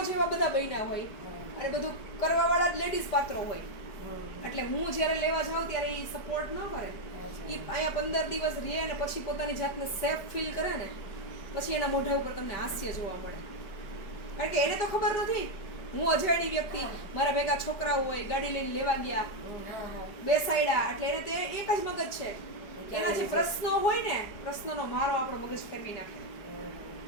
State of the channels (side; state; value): right; late; 4.9 ms